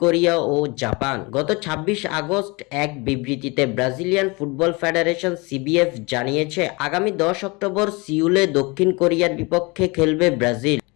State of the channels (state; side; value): quieter; right; 26.7 dB